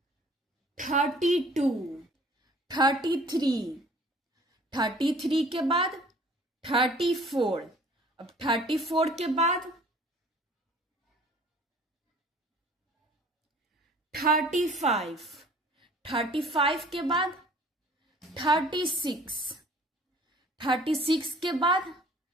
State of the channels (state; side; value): normal; both; correlation 0.52